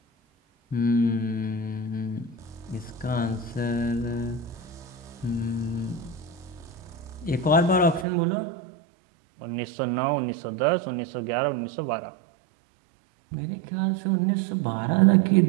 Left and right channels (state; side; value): drops out; left; at 8.1 s